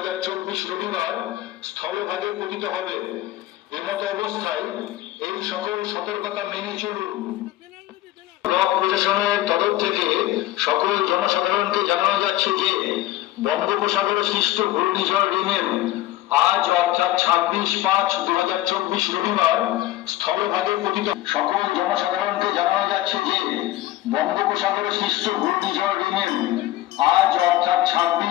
রবিবার স্থলভাগে পতিত হবে। এমতো অবস্থায় এই সকল সতর্কতা মেনে চলুন। ব্লক প্রশাসনের তরফ থেকে সকল জনসাধারণকে জানানো যাচ্ছে যে বঙ্গোপসাগরে সৃষ্ট ঘূর্ণিঝড় রিমেল আজ অর্থাৎ 26/5/2024 রবিবার স্থলভাগে পতিত। সকল জনসাধারণকে জানানো যাচ্ছে যে বঙ্গোপসাগরে সৃষ্ট ঘূর্ণিঝড় রিমেল আজ অর্থাৎ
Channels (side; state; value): right; quieter; 15.5 dB